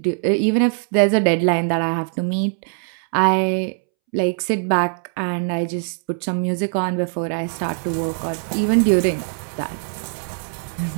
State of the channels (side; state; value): left; silent; 65 dB below the other